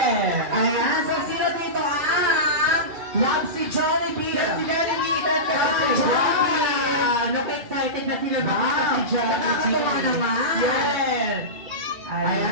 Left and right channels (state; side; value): late; left; 2.3 ms